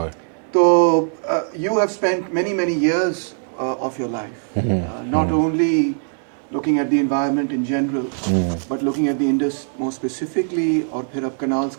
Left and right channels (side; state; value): left; silent; 65 dB below the other